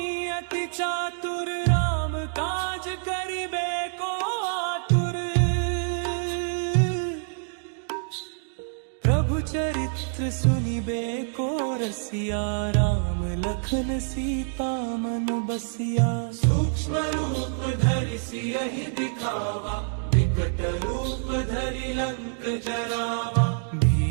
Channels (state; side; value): silent; left; digital silence